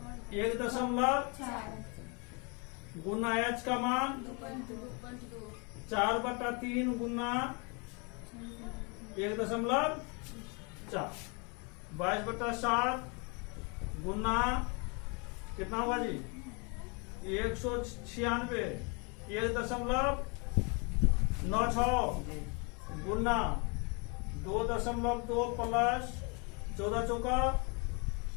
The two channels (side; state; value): right; quieter; 32.9 dB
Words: 1.4 गुना एच का मान 4 बटा 3 गुना 1.4। 22 बटा 7 गुना कितना हुआ जी? 196 1.96 गुना 2.2 प्लस 14 चौका